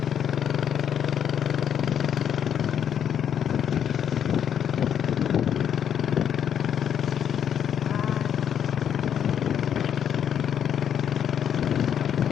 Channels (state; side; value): quieter; right; 8.8 dB